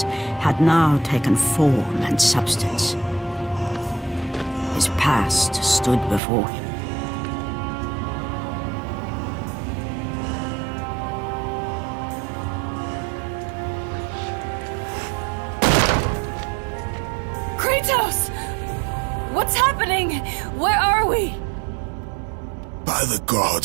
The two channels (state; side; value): drops out; left; at 6.2 s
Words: had now taken form and substance. His past stood before him. Kratos! What's happening? Where are we? By the